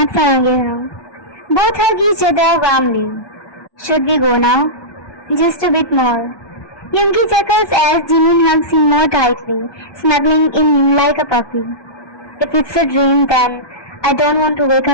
Sarangya. Both hug each other warmly. Should we go now? Just a bit more. Yoongi chuckles as Jimin hugs him more tightly, snuggling in him like a puppy. If it's a dream, then I don't want to wake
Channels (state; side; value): late; right; 1.2 ms